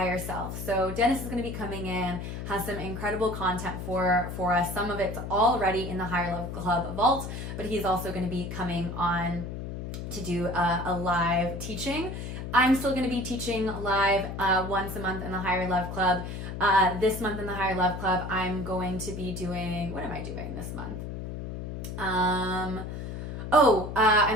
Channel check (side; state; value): left; noise; hum, 7 dB below the sound